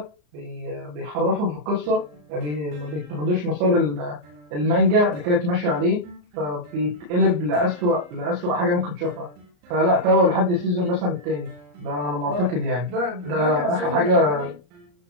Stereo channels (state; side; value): late; left; 34 ms